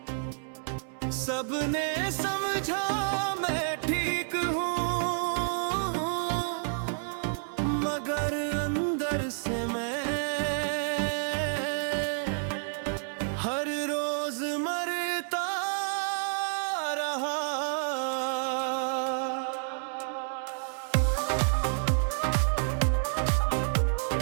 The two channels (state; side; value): silent; left; 58 dB below the other